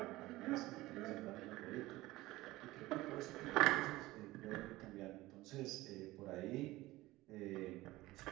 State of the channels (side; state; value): left; quieter; 18.5 dB